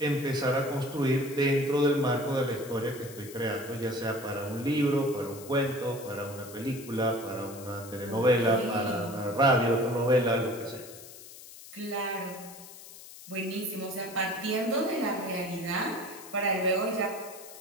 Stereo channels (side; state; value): left; noise; hiss, 16 dB below the sound